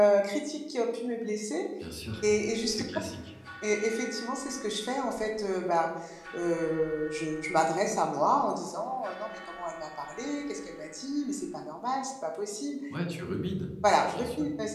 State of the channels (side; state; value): both; identical; correlation 1.00